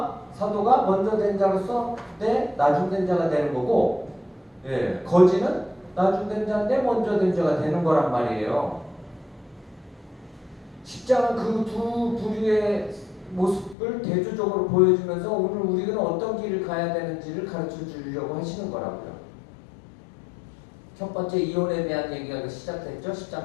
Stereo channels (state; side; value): drops out; right; at 13.8 s